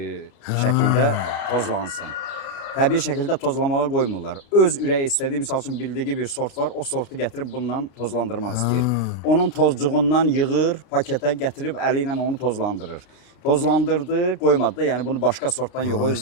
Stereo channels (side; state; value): right; late; 32 ms